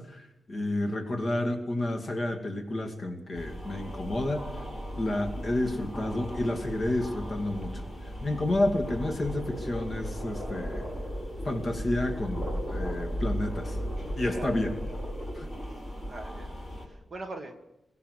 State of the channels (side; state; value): both; normal; correlation 0.94